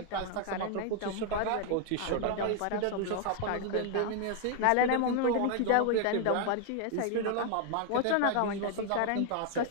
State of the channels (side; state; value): both; different; correlation 0.00